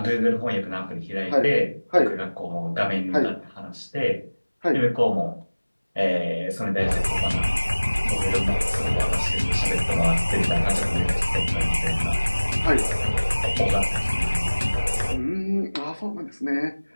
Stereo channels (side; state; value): both; inverted; correlation -1.00